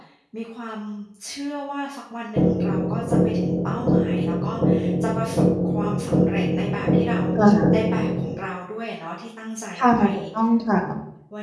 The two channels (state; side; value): identical; both; correlation 1.00